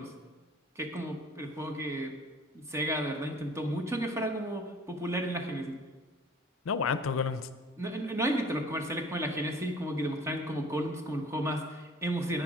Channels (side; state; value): both; normal; correlation 0.49